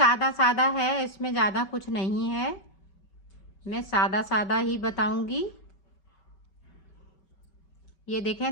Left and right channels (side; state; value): right; late; 5.3 ms